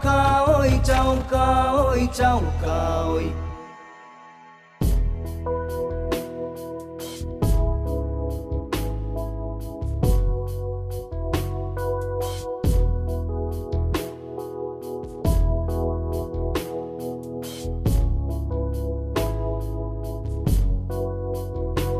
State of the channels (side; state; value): both; identical; correlation 1.00